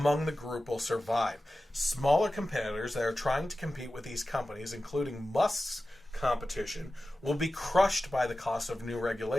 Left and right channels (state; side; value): normal; both; correlation 0.94